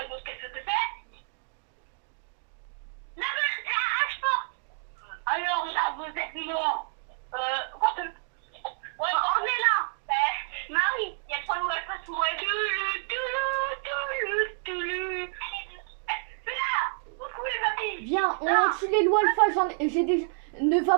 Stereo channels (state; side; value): silent; left; 59 dB below the other